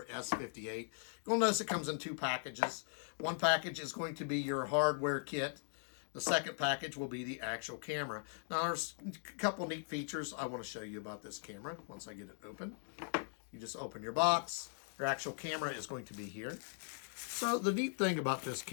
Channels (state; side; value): silent; right; digital silence